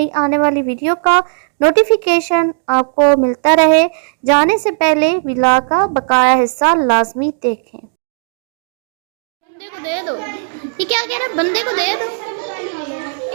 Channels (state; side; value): silent; left; digital silence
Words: आने वाली वीडियो का नोटिफिकेशन आपको मिलता रहे। जाने से पहले व्लॉग का बकाया हिस्सा लाजमी देखें। बंदे को दे दो। ये क्या कह रहा है? बंदे को दे दो।